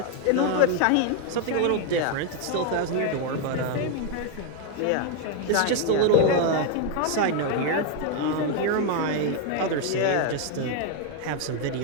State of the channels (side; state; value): both; different; correlation 0.00